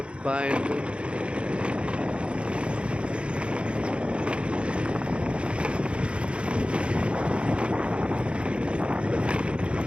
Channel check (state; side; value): late; left; 0.058 ms